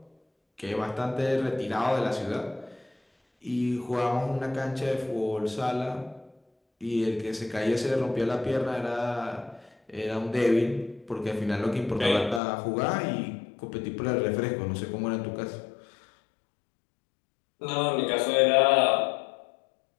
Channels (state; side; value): drops out; right; at 12.4 s